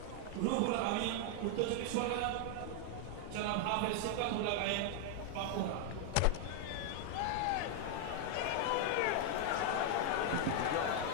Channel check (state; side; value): different; both; correlation 0.00